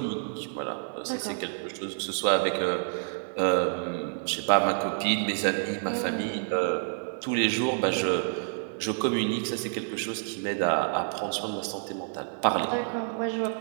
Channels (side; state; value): left; silent; 57 dB below the other